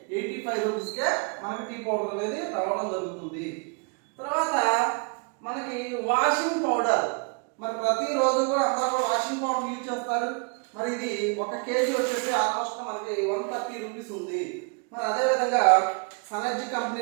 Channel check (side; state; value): left; quieter; 34.9 dB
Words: రూపీస్కే మనకి టీ పౌడర్ అనేది రావడం జరుగుతుంది. తర్వాత మనకి వాషింగ్ పౌడర్, మరి ప్రతిరోజు కూడా అందరూ వాషింగ్ పౌడర్ యూజ్ చేస్తారు. మరి ఇది 1 కేజీ వచ్చేసి ఆల్మోస్ట్ మనకి 130 రూపీస్ ఉంది. మరి అదే విధంగా సనర్జీ